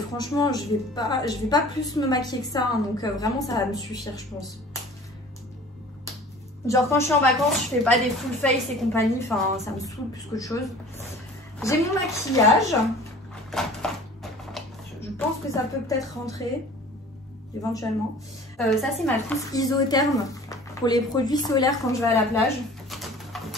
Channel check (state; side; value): normal; both; correlation 0.45